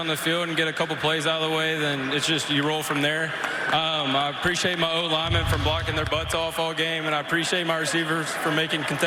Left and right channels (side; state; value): both; identical; correlation 1.00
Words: the field and get a couple plays out of the way, then it's just you roll from there. I appreciate my O-linemen for blocking their butts off all game, and I appreciate my receivers for making